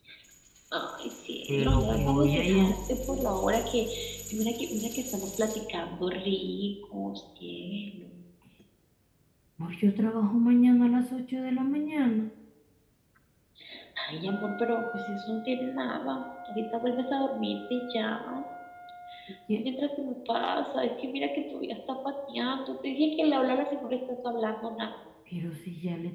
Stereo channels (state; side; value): identical; both; correlation 1.00